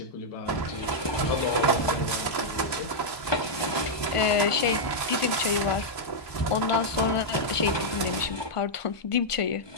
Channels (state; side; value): late; right; 1.2 ms